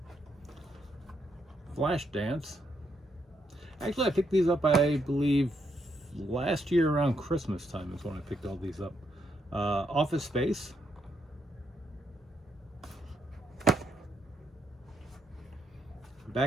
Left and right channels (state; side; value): normal; both; correlation 0.77